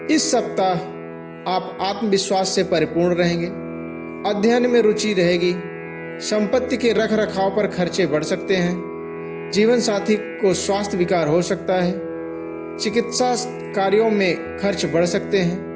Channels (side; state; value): both; identical; correlation 1.00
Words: इस सप्ताह आप आत्मविश्वास से परिपूर्ण रहेंगे। अध्ययन में रुचि रहेगी। संपत्ति के रख रखाव पर खर्चे बढ़ सकते हैं। जीवन साथी को स्वास्थ्य विकार हो सकता है। चिकित्सा कार्यों में खर्च बढ़ सकते हैं।